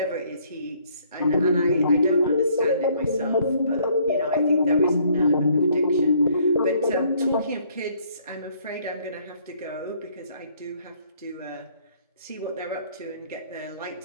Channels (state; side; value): inverted; both; correlation -0.63